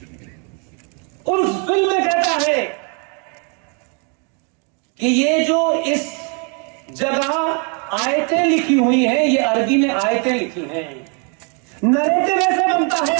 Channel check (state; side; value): quieter; left; 37.5 dB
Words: उस फिल्म में कहता है कि ये जो इस जगह आयतें लिखी हुई हैं, ये अरबी में आयतें लिखी हैं। नरेटिव ऐसे बनता है,